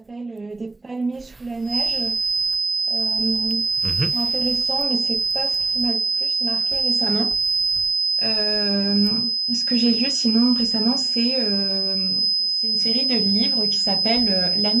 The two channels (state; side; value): quieter; left; 3.2 dB